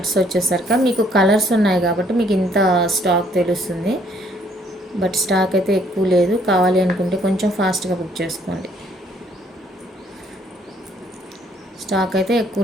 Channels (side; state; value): both; normal; correlation 0.65